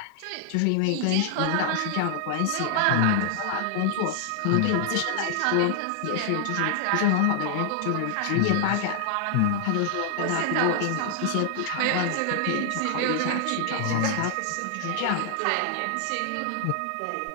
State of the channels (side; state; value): both; different; correlation 0.00